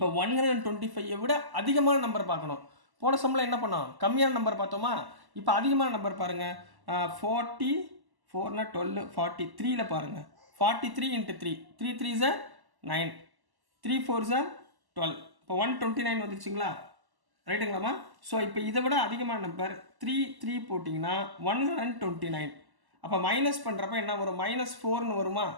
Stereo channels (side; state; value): left; late; 1.1 ms